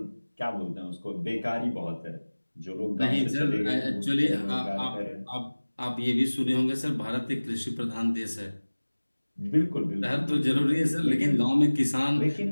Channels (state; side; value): inverted; both; correlation -1.00